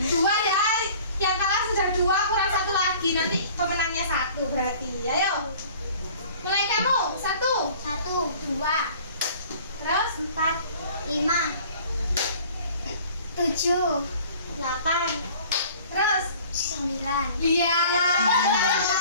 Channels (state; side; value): inverted; both; correlation -0.49